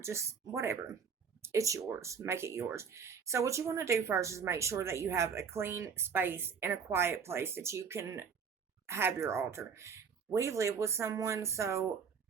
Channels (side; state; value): left; quieter; 6.3 dB